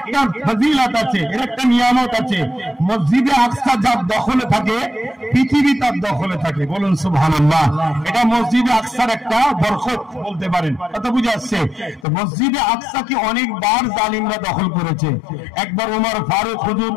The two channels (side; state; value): right; drops out; at 12.1 s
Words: ফজিলত আছে, এর একটা নিয়ামত আছে। মসজিদে আকসা যার দখলে থাকে পৃথিবী তার দখলে থাকে। বলুন সুবহানাল্লাহ। এটা মসজিদে আকসার একটা বরকত বলতে পারেন। কথা বুঝে আসছে? তো মসজিদে আকসাকে অনেকবার জালিমরা দখল করেছে। একবার ওমর ফারুক হুজুর